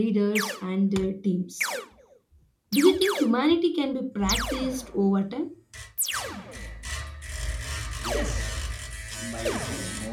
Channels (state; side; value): identical; both; correlation 1.00